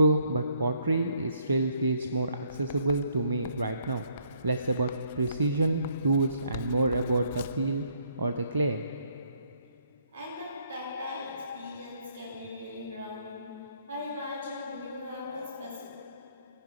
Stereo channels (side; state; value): both; inverted; correlation -0.68